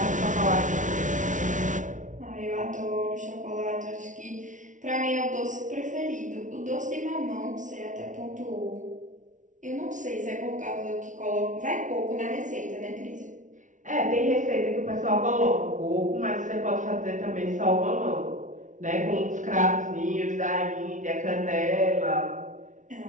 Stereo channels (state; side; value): late; left; 0.37 ms